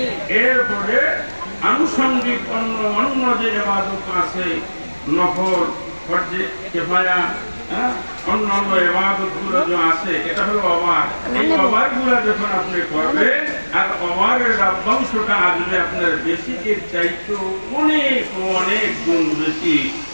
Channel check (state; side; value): inverted; both; correlation -1.00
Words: এরপরে আনুষঙ্গিক অন্য যে ইবাদত আছে, নফল, ফরজে কিফায়া, অন্যান্য ইবাদতগুলো যে আছে, এটা হলো ওভার। এই ওভারগুলো যখন আপনি করবেন আর ওভারের লভ্যাংশটা আসবে আপনার বেসিকের চাইতে অনেক অনেক গুণ বেশি।